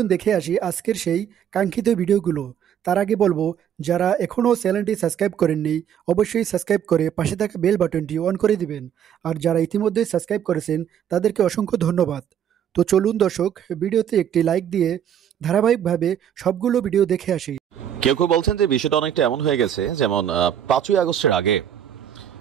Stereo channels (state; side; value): quieter; left; 9.4 dB